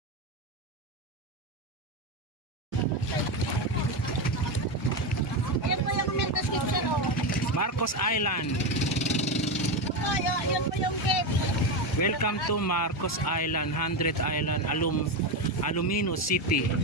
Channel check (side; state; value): both; normal; correlation 0.13